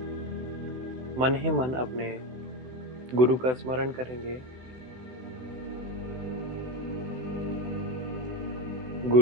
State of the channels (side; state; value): left; late; 16 ms